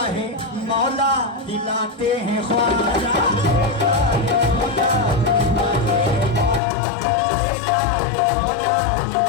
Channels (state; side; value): drops out; right; at 6.6 s